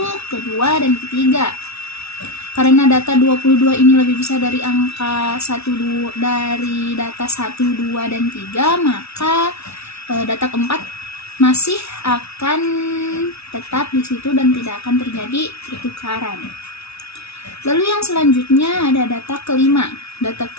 kedua, dan ketiga. Karena data 22 ini lebih besar dari angka 1, dari data 1, 2, dan 3, maka data keempat masih akan tetap di situ dan tidak akan terjadi pertukaran. Lalu yang selanjutnya ada data kelima. Data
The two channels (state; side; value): late; right; 0.79 ms